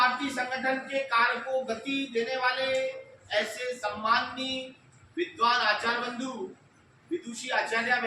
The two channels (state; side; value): identical; both; correlation 1.00